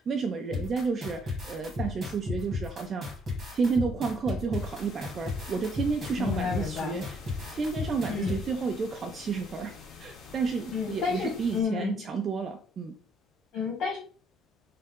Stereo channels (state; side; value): normal; both; correlation 0.68